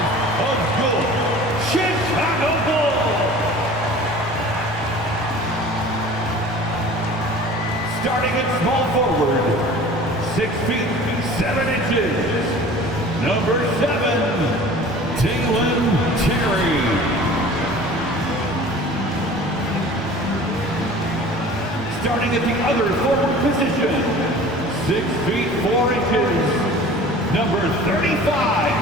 of your Chicago Bulls. Starting at small forward, 6 feet, 7 inches, number 7, Dalen Terry. Starting at the other forward position, 6 feet, 4 inches, number 35,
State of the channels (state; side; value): normal; both; correlation 0.43